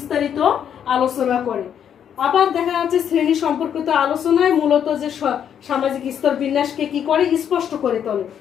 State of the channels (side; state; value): right; quieter; 8.8 dB